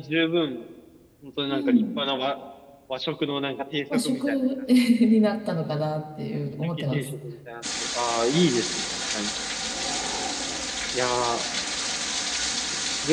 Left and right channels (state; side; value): identical; both; correlation 1.00